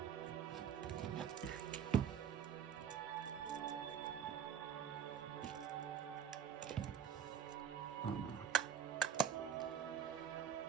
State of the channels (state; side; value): quieter; left; 8.3 dB